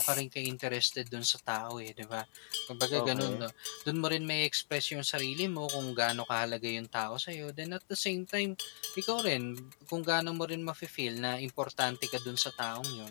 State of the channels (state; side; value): silent; right; digital silence